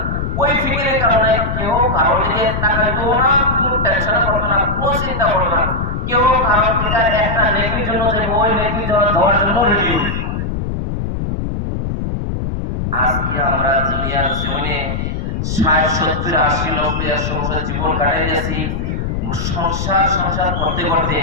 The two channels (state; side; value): noise; left; rumble, 2 dB below the sound